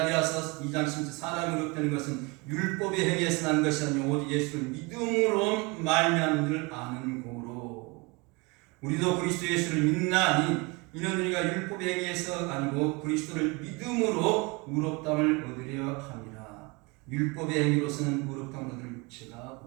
2장 10절 사람이 의롭다는 것은 율법의 행위에서 난 것이 아니요 오직 예수를 믿음으로 말미암은 줄 아는 고로. 우리도 그리스도 예수를 믿나니 이는 우리가 율법의 행위에서 아니고 그리스도를 믿음으로 의롭다함을 얻으려 함이라. 율법의 행위로서는 의롭다함을 얻을 육체가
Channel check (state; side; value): quieter; left; 27.5 dB